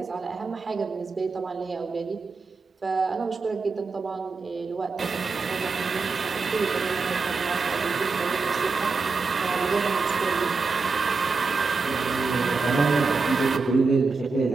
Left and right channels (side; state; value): left; quieter; 4.4 dB